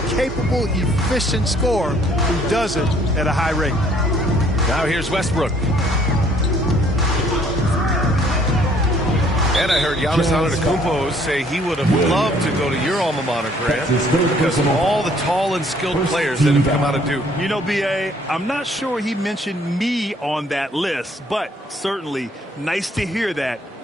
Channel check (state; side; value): normal; both; correlation 0.61